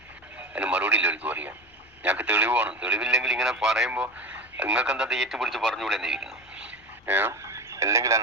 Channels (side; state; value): both; normal; correlation 0.29